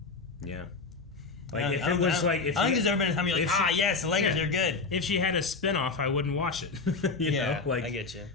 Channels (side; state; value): right; quieter; 4.1 dB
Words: Yeah. Like, if it was like, if I think there's ever been a time you're like, yes, the Lakers are good. If she had a spinoff, I wouldn't watch it. you know? Like, I get you.